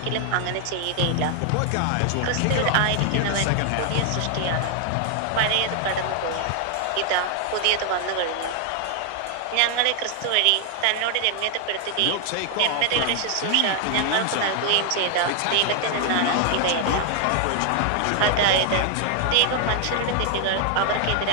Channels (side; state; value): both; different; correlation 0.00